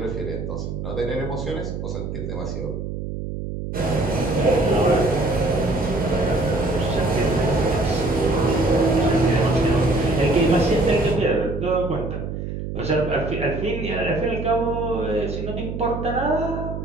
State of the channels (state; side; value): noise; right; hum, 6 dB below the sound